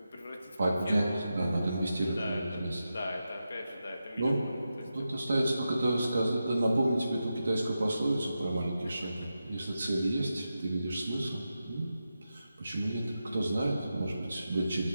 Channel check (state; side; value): inverted; both; correlation -0.90